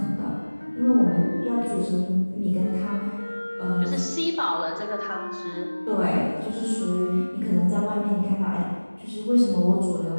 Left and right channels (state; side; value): inverted; both; correlation -1.00